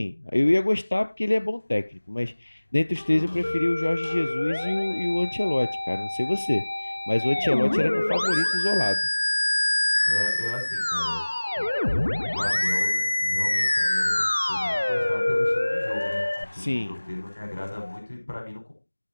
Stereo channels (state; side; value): inverted; both; correlation -1.00